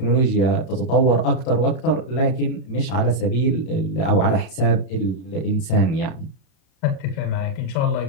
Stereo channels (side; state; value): right; late; 32 ms